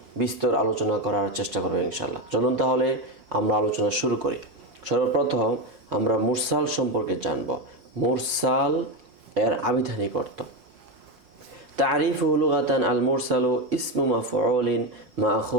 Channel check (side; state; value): left; late; 5.6 ms